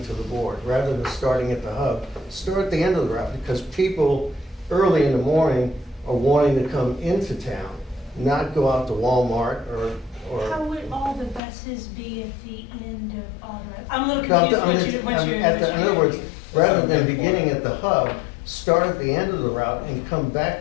the board. Rather than starting at the hub, start at the end of the route, because people early in the morning are wanting to come into town, not go out to Walmart or. How would all the buses be at the end of all the, I'm a little No, confused what you're. in other words, rather than beginning at the hub, start at the end of the route and come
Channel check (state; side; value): drops out; right; at 11.4 s